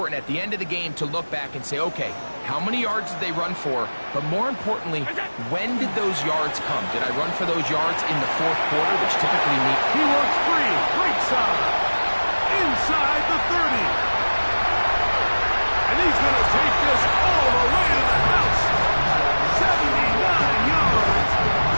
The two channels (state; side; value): inverted; both; correlation -1.00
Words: at the end of the game to look back and say, okay, how many yards did they run for? But more importantly, when did those yards come? Did I run for those yards in the fourth quarter, which typically means... He works free, right side, inside the 30. And he's going to take this all the way to the house. 79 yards.